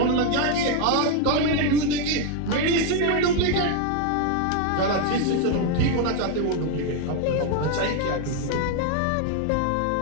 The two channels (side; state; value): both; different; correlation 0.01